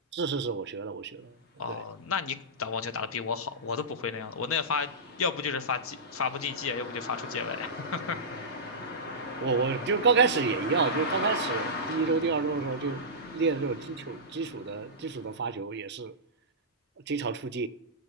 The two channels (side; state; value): both; normal; correlation -0.16